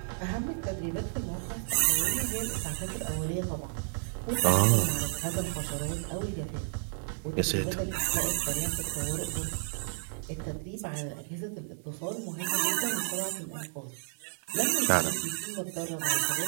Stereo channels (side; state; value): left; silent; 57 dB below the other